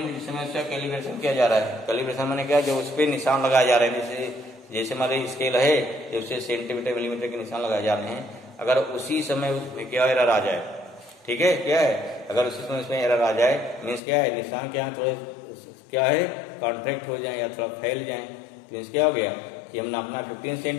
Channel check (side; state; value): right; drops out; at 14.0 s